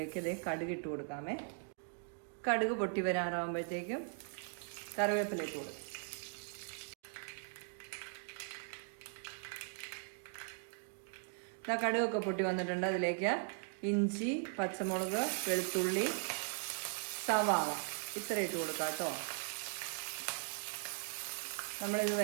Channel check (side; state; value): left; silent; 52 dB below the other